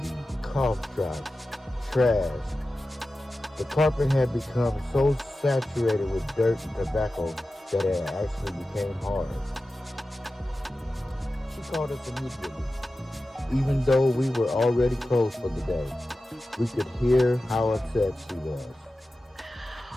cough drops, trash. The carpet had become so saturated with dirt and tobacco that it actually became hard. She called us immediately. Even though we were already closed for the day, we could hear how upset she was.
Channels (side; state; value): both; normal; correlation 0.94